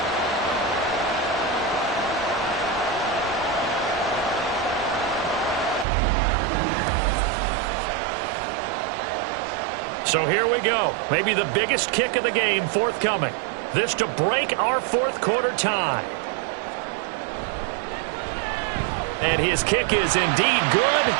So here we go. Maybe the biggest kick of the game forthcoming. This to break our fourth quarter tie. And his kick is indeed good,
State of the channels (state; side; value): drops out; left; at 5.9 s